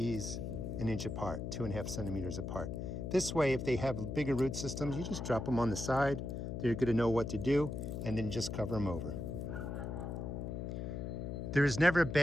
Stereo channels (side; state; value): left; noise; hum, 5 dB below the sound